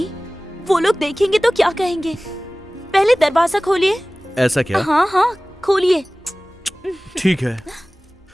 वो लोग देखेंगे तो क्या कहेंगे? पहले दरवाजा खोलिए। ऐसा क्या? हाँ हाँ, खोलिए। ठीक है।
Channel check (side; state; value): both; normal; correlation 0.98